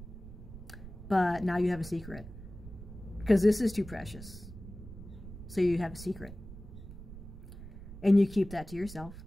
But now you have a secret. Because this is too precious. So you have a secret. And you keep that to yourself.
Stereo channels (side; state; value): right; noise; rumble, 14 dB below the sound